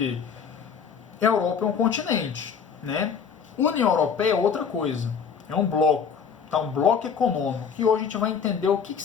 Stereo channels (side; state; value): right; quieter; 6.6 dB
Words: A Europa é um continente, né? União Europeia é outra coisa. É um bloco, tá? Um bloco econômico. E hoje a gente vai entender o que